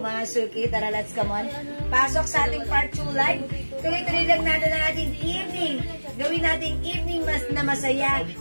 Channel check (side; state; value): both; inverted; correlation -1.00